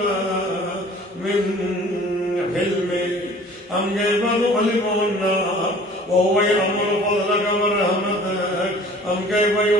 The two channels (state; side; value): normal; both; correlation 0.48